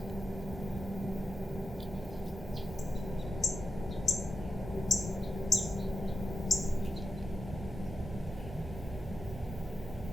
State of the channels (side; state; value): both; normal; correlation 0.89